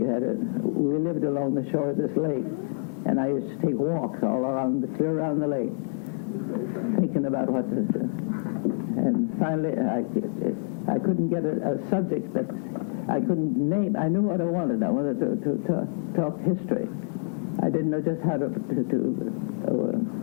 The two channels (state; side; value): silent; right; digital silence